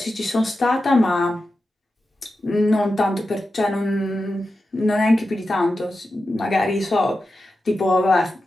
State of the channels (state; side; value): normal; both; correlation 0.91